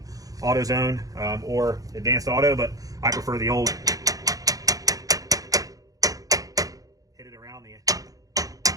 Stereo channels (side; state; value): left; late; 0.17 ms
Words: AutoZone or Advanced Auto, but I prefer the old. Hit it around the